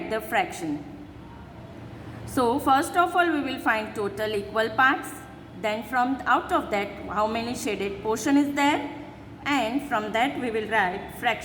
the fraction. So first of all we will find total equal parts. Then from out of that how many shaded portion is there, and from that we will write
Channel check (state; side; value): identical; both; correlation 1.00